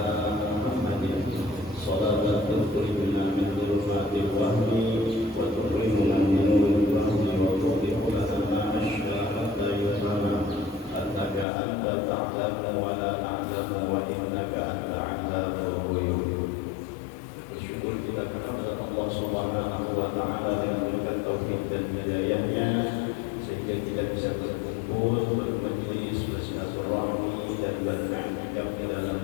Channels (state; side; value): drops out; right; at 11.5 s